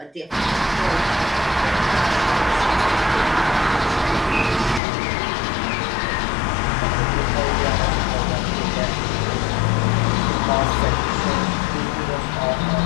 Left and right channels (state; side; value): drops out; right; at 4.8 s